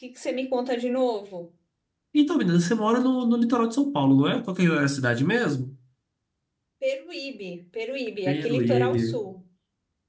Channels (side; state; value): both; identical; correlation 1.00